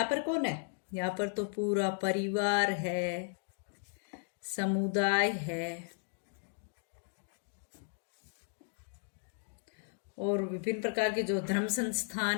पर कौन है, यहाँ पर तो पूरा परिवार है, समुदाय है, और विभिन्न प्रकार के जो धर्म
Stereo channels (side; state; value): right; silent; digital silence